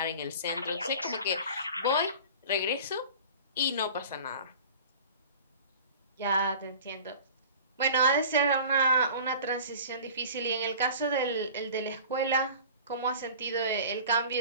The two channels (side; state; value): both; inverted; correlation -0.41